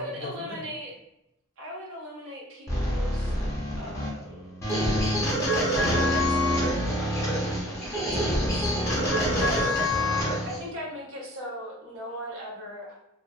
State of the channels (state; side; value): normal; both; correlation 0.52